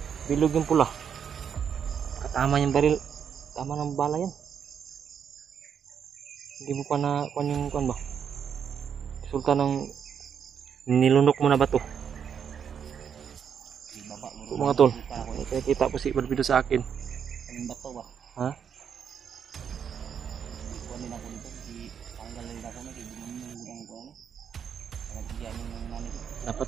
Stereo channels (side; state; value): left; quieter; 7.7 dB